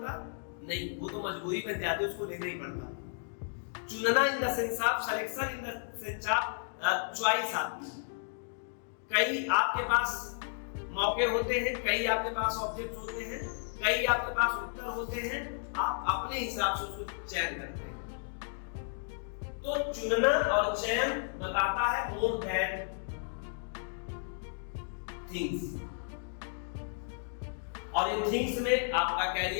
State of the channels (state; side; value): silent; right; digital silence